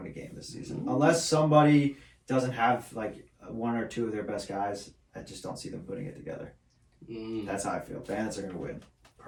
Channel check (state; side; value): identical; both; correlation 1.00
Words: win a game this season. Unless somebody doesn't have like one or two of their best guys. I just don't see them putting it together. That's how I feel. Bandits are going to win.